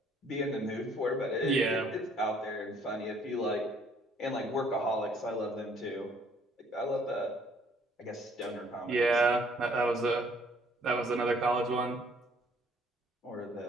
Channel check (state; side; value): normal; both; correlation 0.62